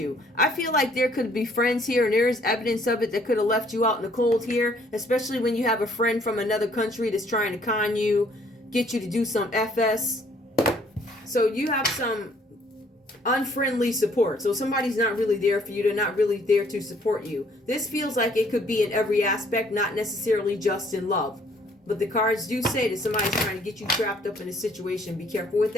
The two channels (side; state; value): both; normal; correlation 0.62